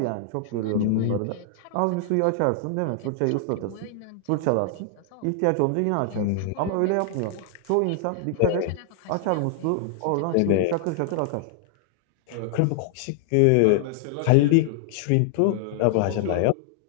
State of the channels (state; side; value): different; both; correlation 0.00